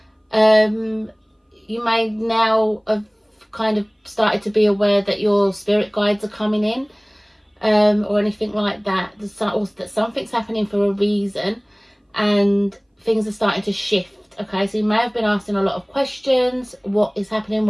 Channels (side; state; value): both; identical; correlation 1.00